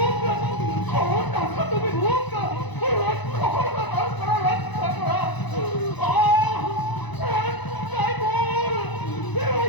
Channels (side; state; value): right; late; 1.0 ms